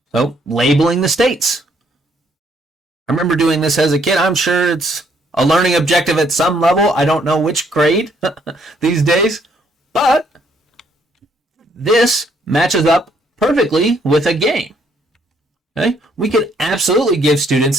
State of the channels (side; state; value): both; normal; correlation 0.68